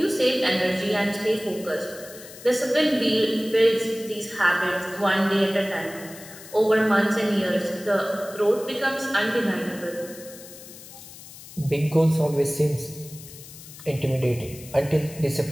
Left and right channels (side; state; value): left; noise; hiss, 17 dB below the sound